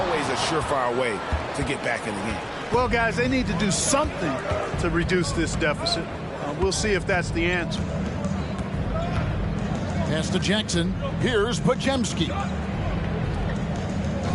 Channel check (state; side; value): identical; both; correlation 1.00